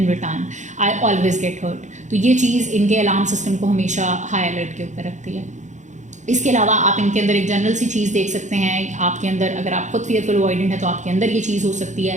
return, I always get hurt. तो ये चीज़ इनके अलार्म सिस्टम को हमेशा हाई अलर्ट के ऊपर रखती है। इसके अलावा आप इनके अंदर एक जनरल सी चीज़ देख सकते हैं। आपके अंदर, अगर आप खुद फियरफुल अवॉइडेंट है तो आपके अंदर ये चीज़ हो सकती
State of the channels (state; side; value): late; left; 0.35 ms